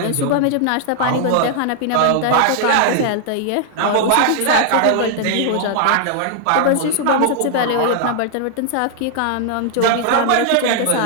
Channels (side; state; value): both; different; correlation 0.00